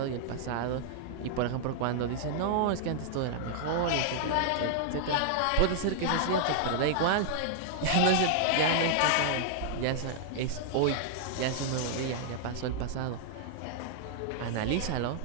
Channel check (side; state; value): both; different; correlation -0.01